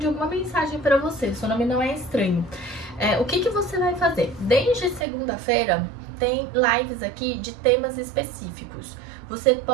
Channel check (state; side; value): drops out; left; at 5.1 s